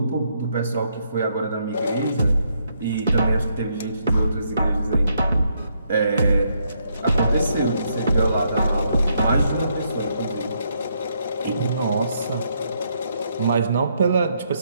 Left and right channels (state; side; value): inverted; both; correlation -0.75